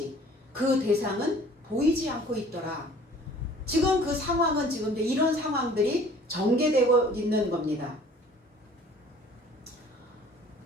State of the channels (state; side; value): normal; both; correlation 0.51